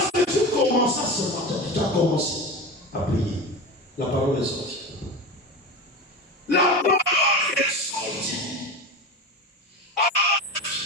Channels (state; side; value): normal; both; correlation 0.26